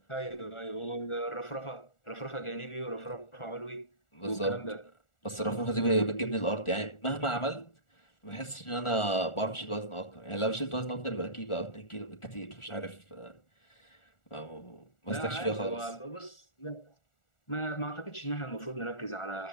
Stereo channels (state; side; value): late; right; 1.4 ms